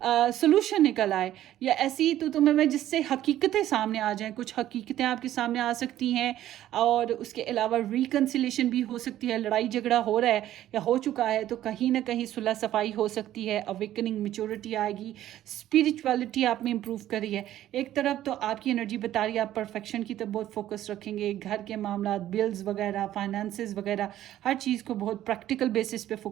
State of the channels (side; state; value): left; quieter; 12.9 dB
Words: सोल्यूशन निकल आए, या ऐसी तू मैं जिससे हकीकतें सामने आ जाएं। कुछ हकीकतें आपके सामने आ सकती हैं, और उसके अलावा रिकन्सिलेशन भी हो सकती है। लड़ाई झगड़ा हो रहा है या हो चुका है तो कहीं ना कहीं सुलह सफाई हो सकती है, अवेकनिंग मेच्योरिटी आएगी, स्पिरिचुअलिटी आप में इम्प्रूव करी है। एक तरफ तो आपकी एनर्जी बता रही है आप परफेक्शन की तरफ बहुत फोकस रखेंगे, घर के मामला, बिल्स वगैरह, फाइनेंसेस वगैरह, हर चीज़ को बहुत प्रैक्टिकल बेसिस पे